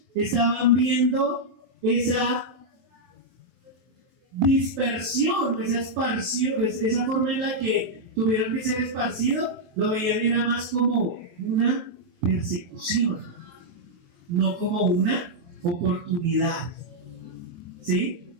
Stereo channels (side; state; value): left; late; 23 ms